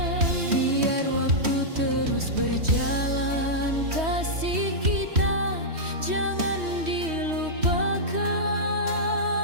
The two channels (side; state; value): left; late; 3.1 ms